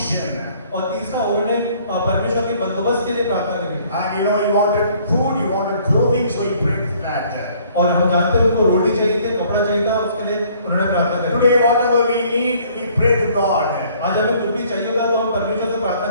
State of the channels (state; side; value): inverted; both; correlation -0.59